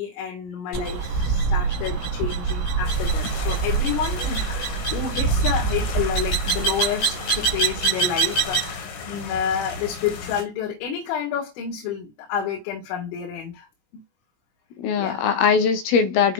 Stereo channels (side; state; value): right; late; 17 ms